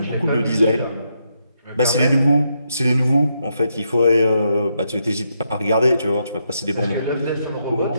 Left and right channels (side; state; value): both; inverted; correlation -0.80